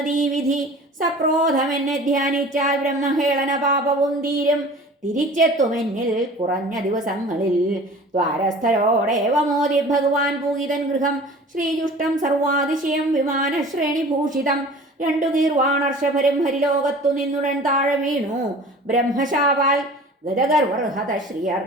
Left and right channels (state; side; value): normal; both; correlation 0.43